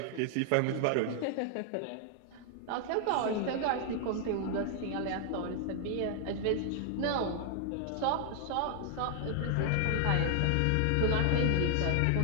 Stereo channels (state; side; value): different; both; correlation 0.00